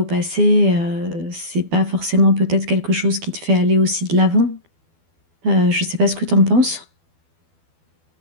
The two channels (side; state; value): left; late; 12 ms